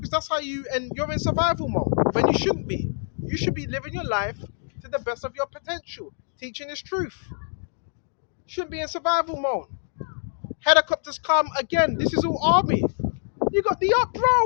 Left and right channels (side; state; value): right; silent; digital silence